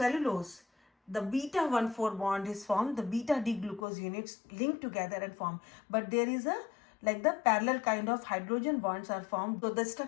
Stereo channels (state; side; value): drops out; right; at 3.9 s